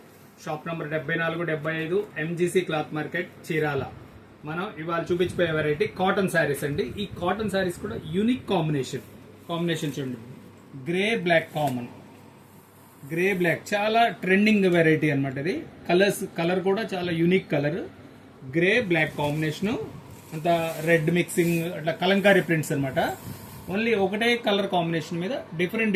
Shop number 74-75 MGC cloth market, Chirala. మనం ఇవాళ చూపించిపోయే వెరైటీ కాటన్ శారీస్ అండి. ఈ కాటన్ శారీస్ కూడా యూనిక్ కాంబినేషన్ చూడండి. Grey black common, grey black చాలా ట్రెండింగ్ వెరైటీ అనమాట. ఇది కలర్ కూడా చాలా unique colour. Grey black combination అంతా రెడ్ మిక్సింగ్, అట్లా కలంకారీ ప్రింట్స్ అనమాట. ఓన్లీ ఒకటే కలర్ కాంబినేషన్ మీద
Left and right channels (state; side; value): identical; both; correlation 1.00